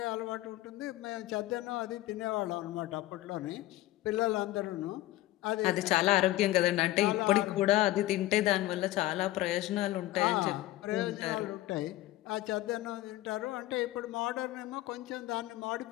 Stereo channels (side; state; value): right; quieter; 16.4 dB